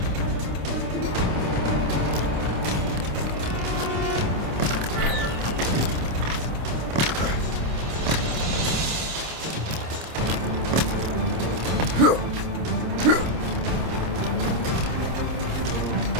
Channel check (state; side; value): late; left; 27 ms